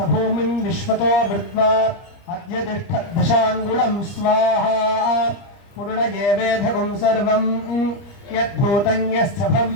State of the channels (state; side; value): late; right; 29 ms